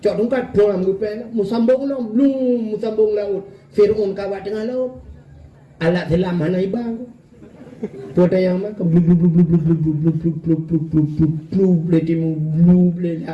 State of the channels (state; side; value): identical; both; correlation 1.00